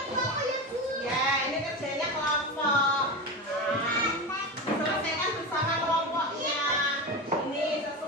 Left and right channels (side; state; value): both; normal; correlation 0.22